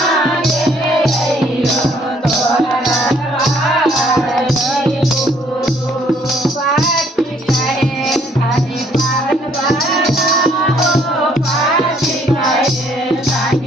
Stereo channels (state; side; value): normal; both; correlation 0.64